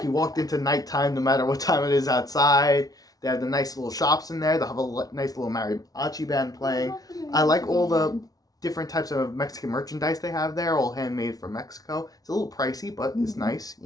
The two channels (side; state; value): right; late; 0.18 ms